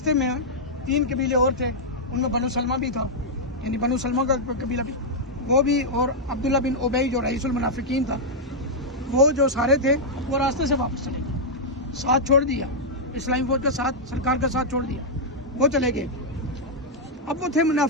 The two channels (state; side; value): normal; both; correlation -0.06